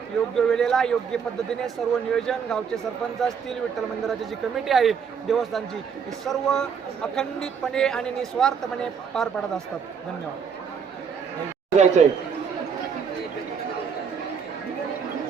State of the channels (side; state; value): left; quieter; 6.7 dB